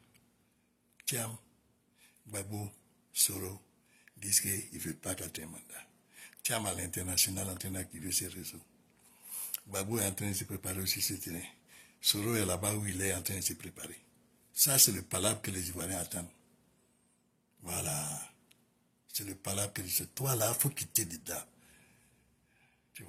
Tiens, Gbagbo, Soro, disent qu'ils ne veulent pas quatrième mandat. Tiens, à l'international en train d'activer ses réseaux. Gbagbo est en train de se préparer aussi ce terrain. Soro est là-bas où il est en train de se préparer. Ça, c'est le palabre que les Ivoiriens attendent. Voilà. C'est le palabre que c'est toi là, il faut quitter dedans. Tu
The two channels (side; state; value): both; identical; correlation 1.00